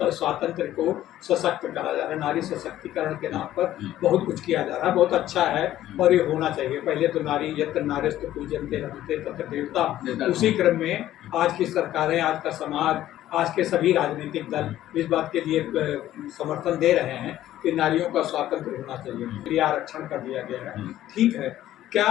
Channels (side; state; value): right; quieter; 13.3 dB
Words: को सशक्त करा जा रहा है, नारी सशक्तिकरण के नाम पर बहुत कुछ किया जा रहा है, बहुत अच्छा है और ये होना चाहिए। पहले तो नारी यत्र नारीस्तु पूज्यन्ते रमन्ते तत्र देवता, उसी क्रम में आज की सरकारें, आज का समाज, आज के सभी राजनीतिक दल इस बात के लिए समर्थन दे रहे हैं कि नारियों का स्वातंत्र होना चाहिए, प्रिय आरक्षण कर दिया गया है। ठीक है,